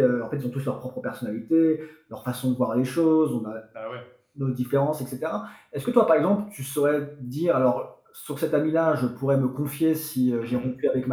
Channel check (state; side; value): identical; both; correlation 1.00